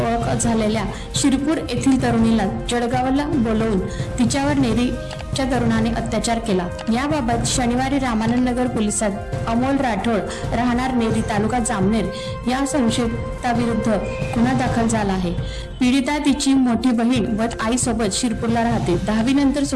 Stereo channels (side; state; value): both; identical; correlation 1.00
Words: ओळख झालेल्या शिरपूर येथील तरुणीला जळगावला बोलवून तिच्यावर नेरीच्या तरुणाने अत्याचार केला. याबाबत शनिवारी रामानंद नगर पोलिसात अमोल राठोड राहणार नेरी तालुका जामनेर या संशयिताविरुद्ध गुन्हा दाखल झाला आहे. पीडिता तिची मोठी बहीण व आईसोबत शिरपूरला राहते. 10वी नंतर